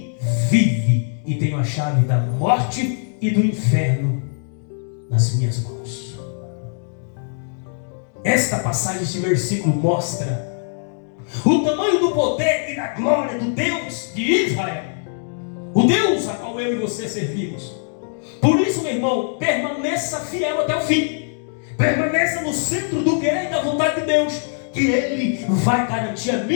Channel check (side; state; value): right; silent; digital silence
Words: vive, e tenho a chave da morte e do inferno nas minhas mãos. Esta passagem, este versículo mostra o tamanho do poder e da glória do Deus de Israel, o Deus a qual eu e você servimos. Por isso, meu irmão, permaneça fiel até o fim. Permaneça no centro do querer e da vontade de Deus, que Ele vai garantir a